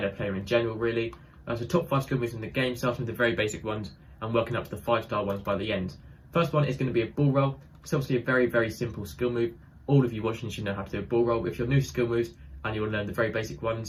player in general really. So top 5 skill moves in the game, starting with the very basic ones and working up to the 5-star ones by the end. First one is going to be a ball roll. It's obviously a very simple skill move. All of you watching should know how to do a ball roll. If you're new to skill moves and you want to learn the very basic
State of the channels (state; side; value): identical; both; correlation 1.00